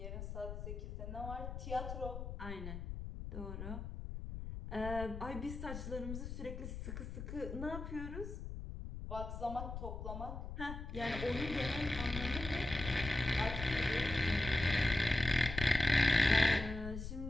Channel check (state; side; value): noise; left; rumble, 7 dB below the sound